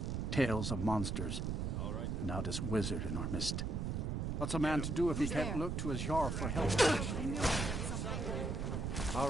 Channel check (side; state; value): right; noise; rumble, 1 dB below the sound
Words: Tales of monsters. And now this wizard in our midst. What's a man to do if he can't look to his Jarl for help? All